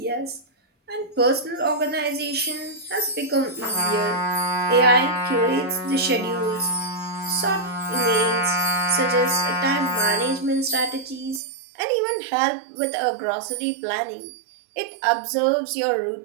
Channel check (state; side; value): drops out; left; at 11.4 s